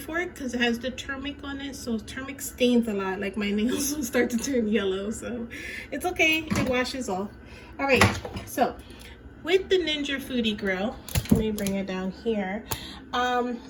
because it has the turmeric on it, so turmeric stains a lot. Like my nails will start to turn yellow, so it's okay, it washes off. All right, so with the Ninja Foodi Grill, let me bring it down here.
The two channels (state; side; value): identical; both; correlation 1.00